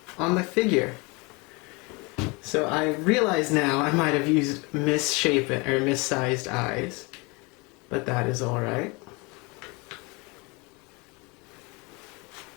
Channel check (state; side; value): quieter; right; 27.8 dB